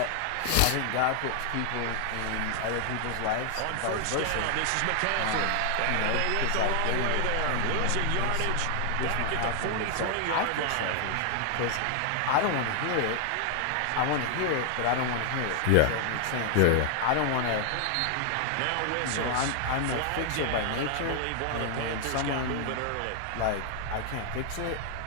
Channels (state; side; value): different; both; correlation 0.00